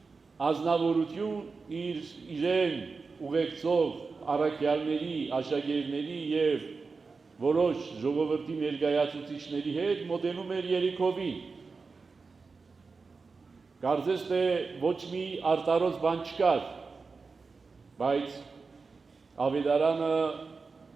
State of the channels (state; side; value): quieter; left; 4.5 dB